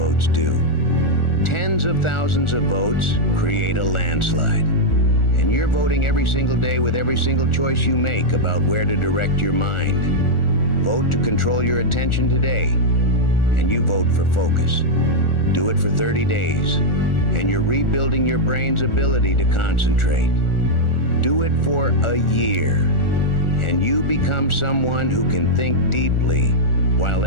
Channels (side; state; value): right; late; 1.4 ms